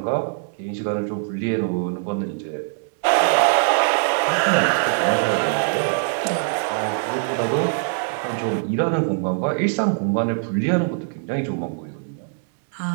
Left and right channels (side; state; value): left; silent; digital silence